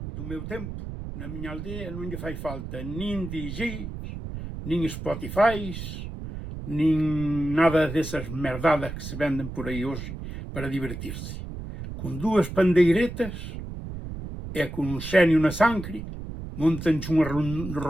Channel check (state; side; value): noise; right; rumble, 8 dB below the sound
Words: do meu tempo, na minha aldeia, non lle fai falta nin DJs, nin Spotifys, nin nada desas merdadas que se venden por aí hoxe para divertirse. Con dúas pandeiretas e con un xenio na sangre, montanche unha